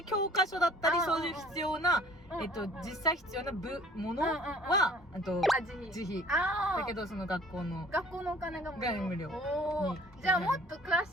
教科書だったり、そういう必要な、実際必要なものは自費。だけどその学校のお金が無料。に。じゃあもっと詳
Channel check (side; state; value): both; normal; correlation 0.53